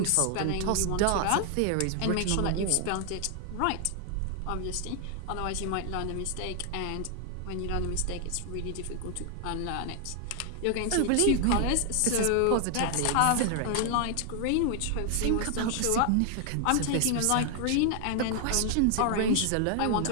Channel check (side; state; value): both; different; correlation 0.00